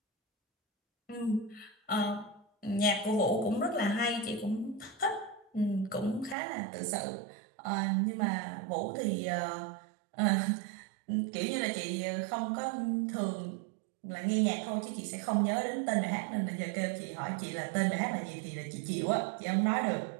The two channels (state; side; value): drops out; left; at 6.4 s